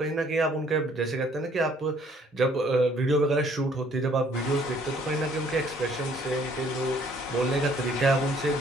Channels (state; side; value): normal; both; correlation 0.61